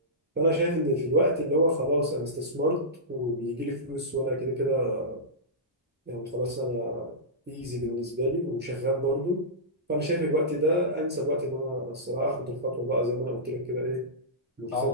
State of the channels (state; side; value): normal; both; correlation -0.17